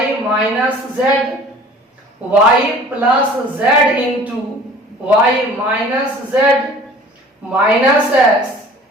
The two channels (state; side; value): normal; both; correlation 0.47